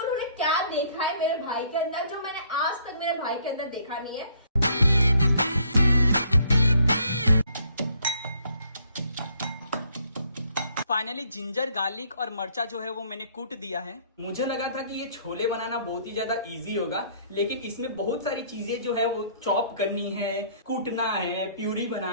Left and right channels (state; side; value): inverted; both; correlation -0.63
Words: क्या देखा है मेरे भाई के अंदर, जो मैंने आज तक मेरे भाई के अंदर देखा नहीं है। फाइनली जिंजर, गार्लिक और मर्चा जो है वो मैंने कूट दिया है। मुझे लगा था कि ये छोले बनाना बहुत ही ज्यादा इजी होगा, लेकिन इसमें बहुत सारी चीजें जो है वो चॉप करनी है, कूटना है, प्यूरी